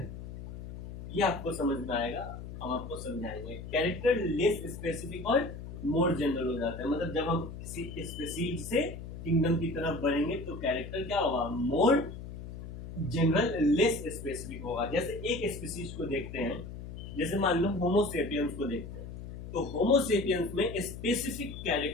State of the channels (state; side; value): noise; left; hum, 10 dB below the sound